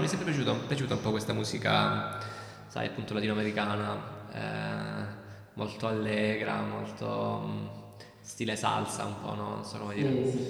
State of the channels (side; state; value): both; identical; correlation 1.00